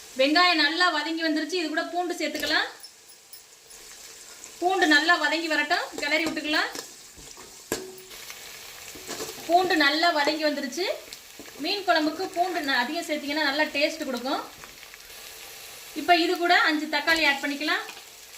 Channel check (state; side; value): identical; both; correlation 1.00